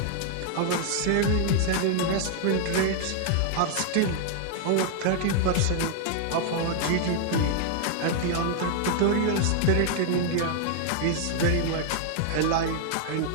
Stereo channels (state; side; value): different; both; correlation 0.00